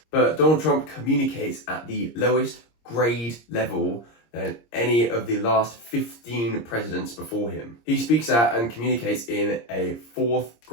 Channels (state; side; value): late; right; 26 ms